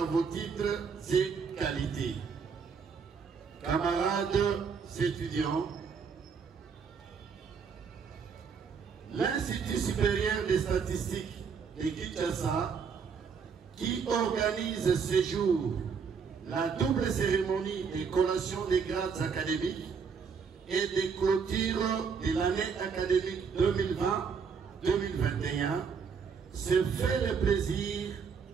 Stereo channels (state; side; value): quieter; left; 6.0 dB